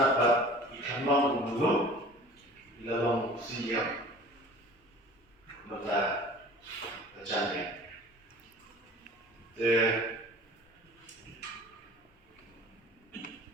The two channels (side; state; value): both; normal; correlation 0.45